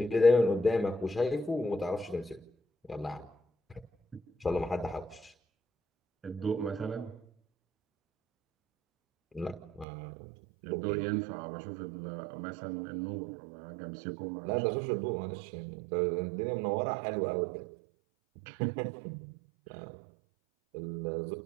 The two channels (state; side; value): drops out; left; at 9.9 s